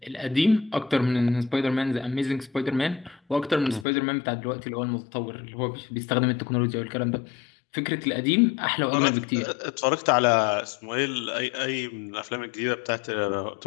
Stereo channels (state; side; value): drops out; right; at 3.9 s